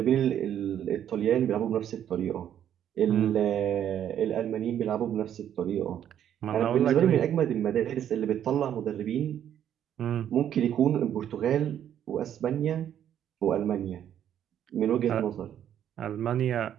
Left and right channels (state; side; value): quieter; left; 10.1 dB